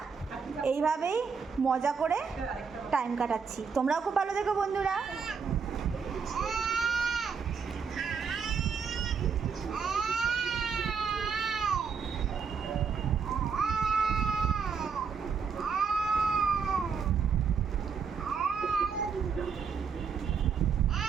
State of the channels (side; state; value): left; quieter; 6.1 dB